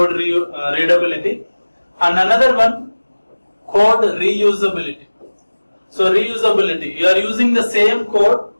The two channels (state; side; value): inverted; both; correlation -1.00